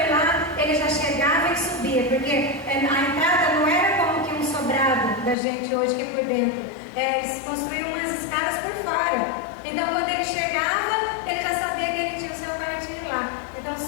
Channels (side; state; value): right; drops out; at 5.4 s